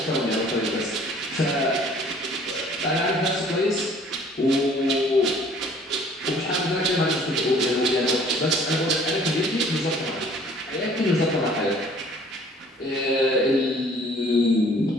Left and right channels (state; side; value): normal; both; correlation 0.54